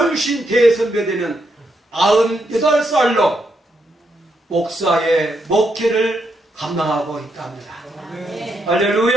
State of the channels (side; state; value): both; normal; correlation 0.79